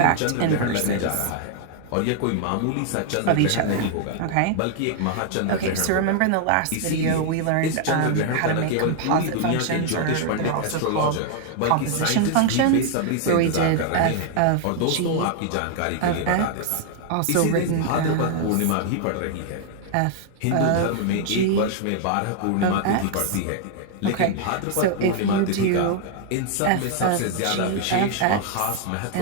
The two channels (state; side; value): different; both; correlation 0.00